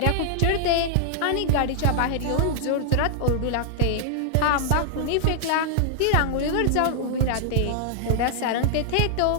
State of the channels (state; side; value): different; both; correlation -0.01